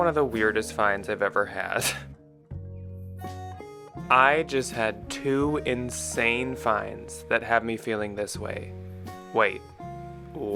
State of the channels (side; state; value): both; identical; correlation 1.00